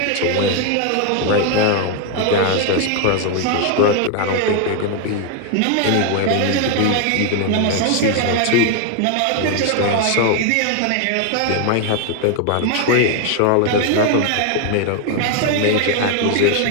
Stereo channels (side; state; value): both; different; correlation 0.01